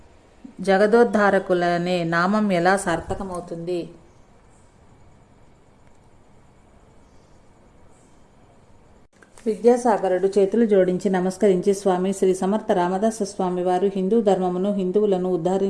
జగదోద్ధారకులనే నామం ఎలా సార్థకమవుతుంది? విద్యాసాగరుడు చేతులు జోడించి నమస్కరించి, స్వామి, శ్రీ సమర్థ రామదాస స్వామి వారు హిందూ ధర్మమును హిందువులను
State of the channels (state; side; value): identical; both; correlation 1.00